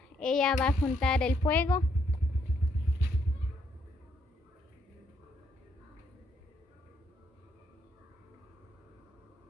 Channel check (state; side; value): normal; both; correlation 0.73